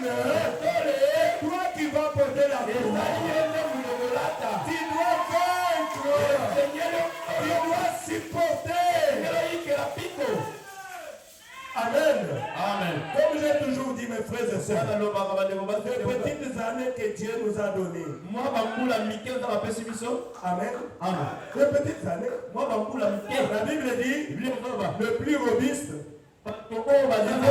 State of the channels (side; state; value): both; identical; correlation 1.00